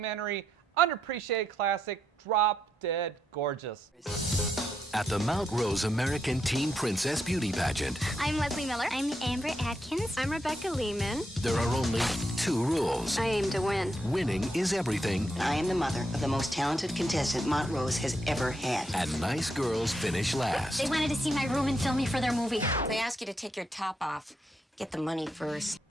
underappreciated classic, drop dead gorgeous. At the Mount Rose American Teen Princess Beauty Pageant. I'm Leslie Miller. I'm Amber Atkins. I'm Rebecca Lehman. There are only 2 rules. I aim to win. Winning is everything. I am the mother of the most talented contestant Montrose has ever had. And nice girls finish last. They wanted to see my room and film me for their movie. They ask you to take your top off. Get the money first.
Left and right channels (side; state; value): both; normal; correlation 0.81